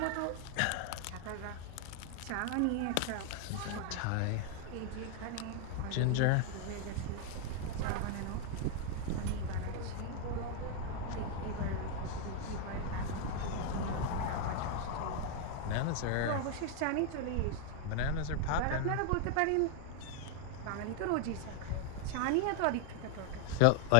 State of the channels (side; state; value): both; different; correlation 0.01